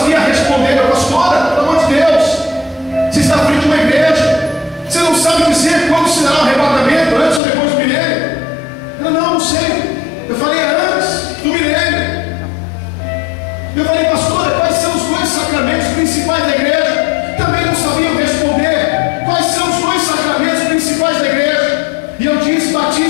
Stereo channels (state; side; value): drops out; right; at 7.4 s